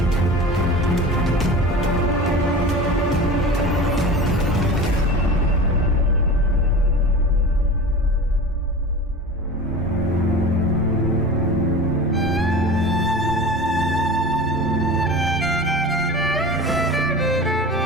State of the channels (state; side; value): normal; both; correlation 0.33